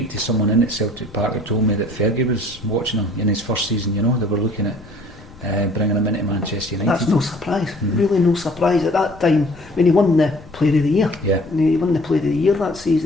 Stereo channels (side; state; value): left; noise; rumble, 21 dB below the sound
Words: to someone in at Celtic Park who told me that Fergie was watching him in his first season. You know, they were looking at bringing him into Manchester United. That's no surprise, really no surprise at that time when he won the Player of the Year. Yeah. He won the Player of the Year that